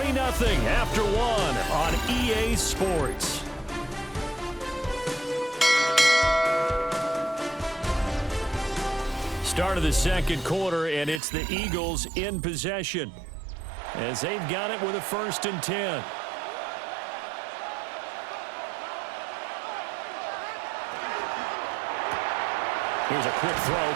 after 1 on EA Sports. Start of the second quarter, and it's the Eagles in possession as they've got it with a 1st and 10. Here's a quick throw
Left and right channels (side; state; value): left; drops out; at 11.2 s